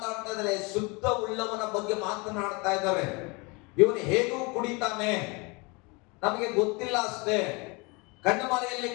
ಇದ್ದಾರೆ? ಶುದ್ಧ ಉಳ್ಳವನ ಬಗ್ಗೆ ಮಾತನಾಡ್ತಾ ಇದ್ದಾರೆ. ಇವನು ಹೇಗೂ ಕುಡಿತಾನೆ, ನಮಗೆ ಗೊತ್ತಿಲ್ಲ ಅಷ್ಟೇ, ಕಣ್ಣು ಮರೆಯಲ್ಲಿ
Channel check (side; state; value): right; quieter; 28.3 dB